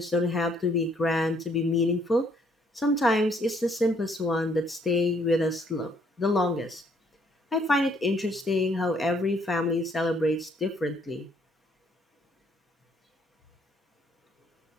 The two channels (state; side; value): normal; both; correlation 0.66